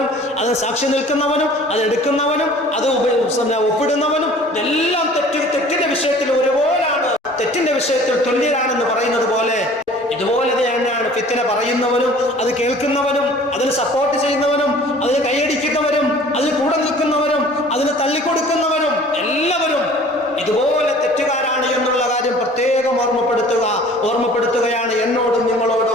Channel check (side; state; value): both; normal; correlation 0.49